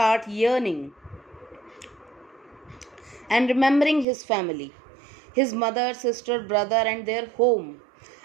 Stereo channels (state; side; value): drops out; left; at 4.0 s